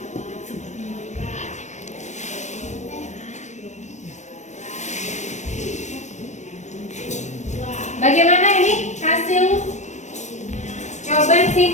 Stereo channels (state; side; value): late; right; 0.34 ms